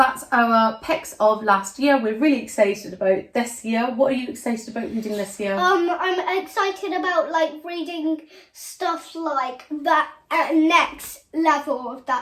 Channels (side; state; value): both; identical; correlation 1.00